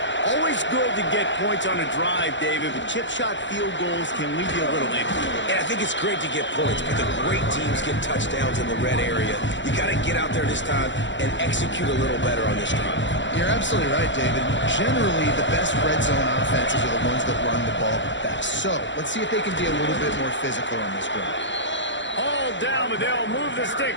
Always good to get points on a drive, David, but chip shot field goals can leave you a little empty. And I think it's great to get points, but the great teams get touchdowns in the red area. You got to get out there this time and execute a little better on this drive. You're absolutely right, David. Generally, the best red zone offenses are the ones that run the ball best. So, let's see if they can be a little bit more physical on this drive. All down, but they'll move the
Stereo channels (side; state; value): right; late; 0.54 ms